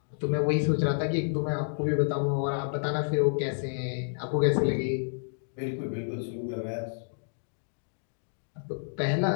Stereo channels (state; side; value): silent; right; digital silence